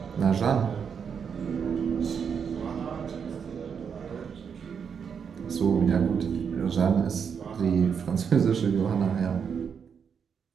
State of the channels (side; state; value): left; quieter; 6.8 dB